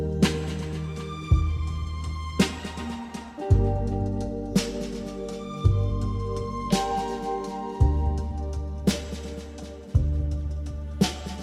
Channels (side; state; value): both; identical; correlation 1.00